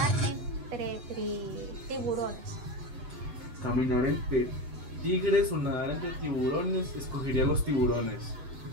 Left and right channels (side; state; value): left; late; 7.9 ms